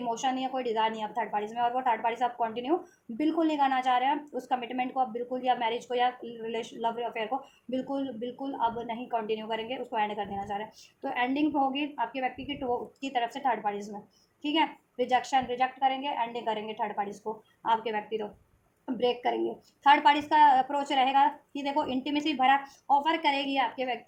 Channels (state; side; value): identical; both; correlation 1.00